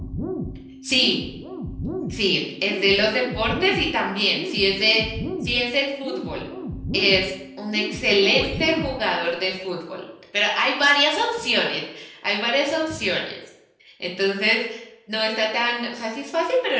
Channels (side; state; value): both; identical; correlation 1.00